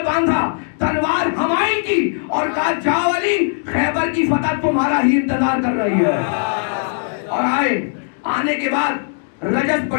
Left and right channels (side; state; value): right; silent; digital silence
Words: باندھا, تلوار حمائل کی اور کہا جاؤ علی, خیبر کی فتح تمہارا ہی انتظار کر رہی ہے. اور آئے. آنے کے بعد رجز